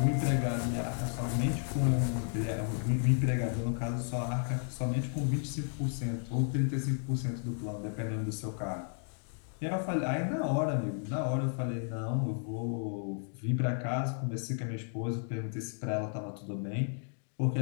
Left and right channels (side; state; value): right; silent; 56 dB below the other